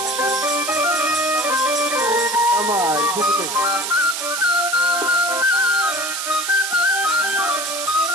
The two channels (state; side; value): noise; right; hiss, 4 dB below the sound